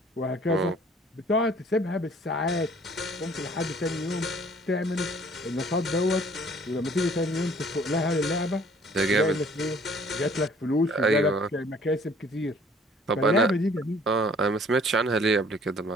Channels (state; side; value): normal; both; correlation 0.56